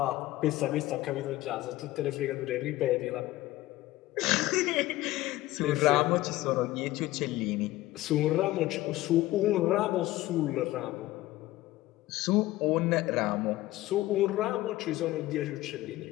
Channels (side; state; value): right; quieter; 17.0 dB